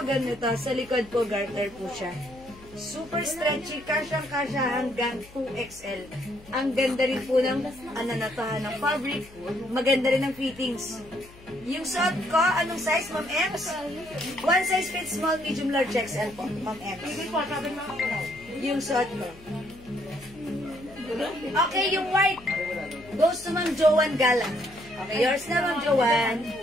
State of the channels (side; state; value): left; noise; hum, 22 dB below the sound